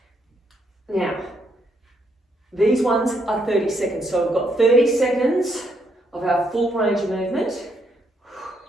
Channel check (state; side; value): normal; both; correlation 0.75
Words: Now, these ones are 30 seconds. So we've got 30 seconds of our full range of movement.